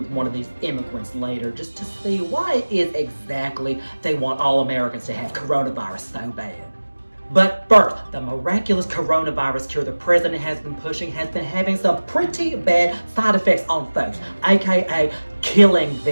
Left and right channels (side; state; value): both; inverted; correlation -1.00